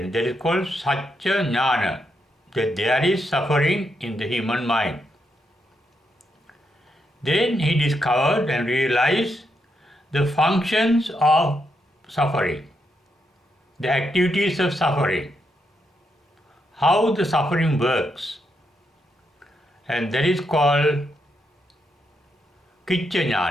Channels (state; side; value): normal; both; correlation 0.81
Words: that is called Satya Jnana, that there is suffering in the human mind. Then he discovered and realized the functions of suffering, the activities of suffering, how the suffering works, and that is called Kicca